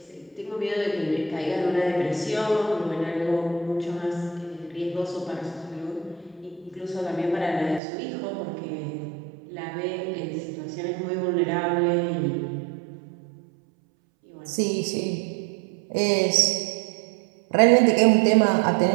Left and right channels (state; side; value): drops out; left; at 7.8 s